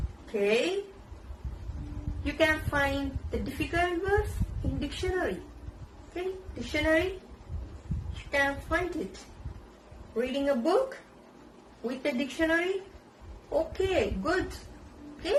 Okay. You can find the difficult words in dictionary. Okay? Dictionary. You can find it. Reading a book with the dictionary. Okay, good.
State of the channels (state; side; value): identical; both; correlation 1.00